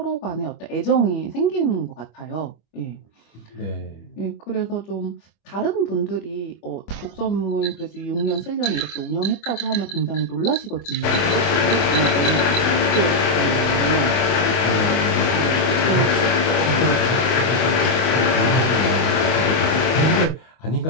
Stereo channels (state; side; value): late; right; 25 ms